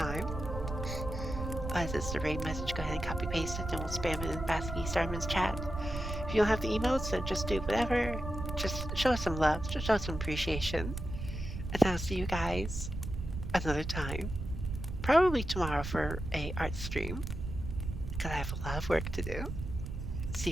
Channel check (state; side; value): noise; right; rumble, 6 dB below the sound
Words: As it's the raid message, go ahead and copy paste it, and we'll spam it in Basky Starman's chat. If you don't have the emotes, then just do whatever. Just show us some love, just show us some appreciation. And I'll see you guys another time. Probably tomorrow for a art stream, because I have a lot of work to do. See